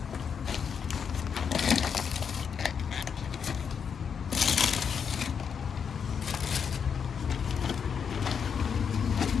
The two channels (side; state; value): right; quieter; 6.9 dB